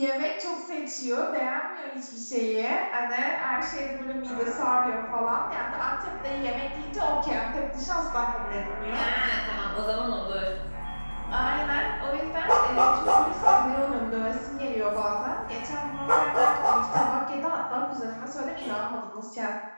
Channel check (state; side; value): inverted; both; correlation -1.00